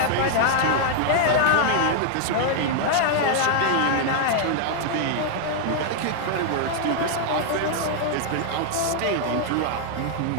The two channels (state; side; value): different; both; correlation 0.00